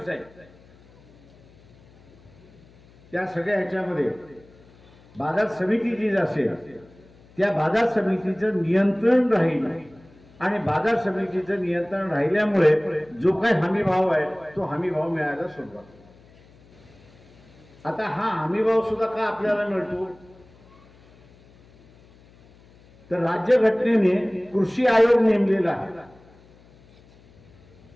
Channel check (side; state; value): left; noise; hum, 27 dB below the sound